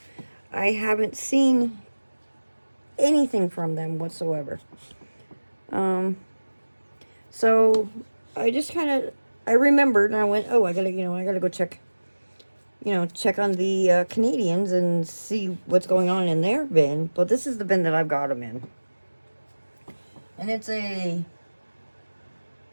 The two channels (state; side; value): inverted; both; correlation -1.00